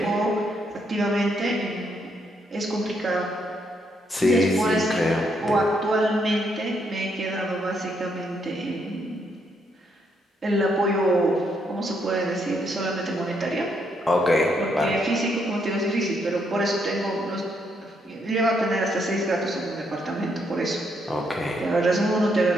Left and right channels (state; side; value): normal; both; correlation 0.75